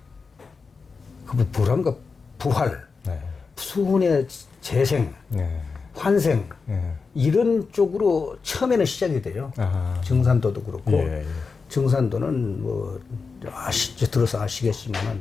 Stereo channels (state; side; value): quieter; right; 4.8 dB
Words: 그 뭐란가 부활, 수운의 재생, 환생 이런 쪽으로 처음에는 시작이 돼요. 정산도도 그렇고 정산도는 뭐 들어서 아시겠지만은